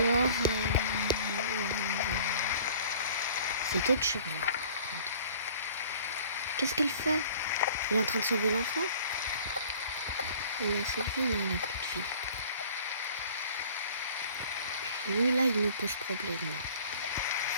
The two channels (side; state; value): both; inverted; correlation -0.50